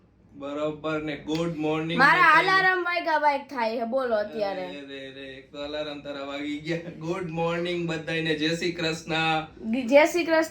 બરોબર ને. Good morning. મારા અલાર્મ વાગ્યા વાગ થાય છે, બોલો અત્યારે. એક તો અલાર્મ તારા વાગી ગયા. ગુડ મોર્નિંગ બધાને. જય શ્રી કૃષ્ણ. જય શ્રી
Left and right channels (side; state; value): both; identical; correlation 1.00